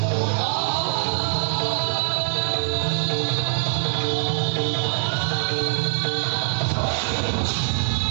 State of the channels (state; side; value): silent; left; 63 dB below the other